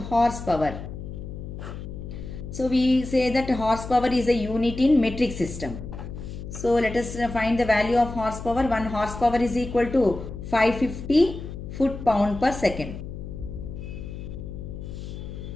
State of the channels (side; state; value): left; noise; hum, 9 dB below the sound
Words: So we say that horsepower is a unit in metric system. So let us find the value of horsepower. 1 horsepower is equal to 550 foot-pound per second.